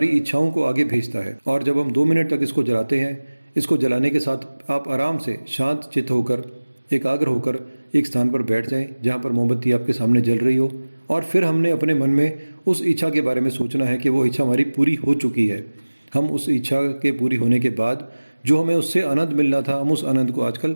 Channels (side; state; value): both; inverted; correlation -1.00